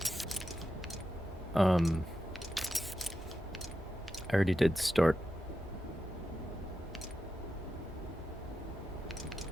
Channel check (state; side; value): normal; both; correlation 0.89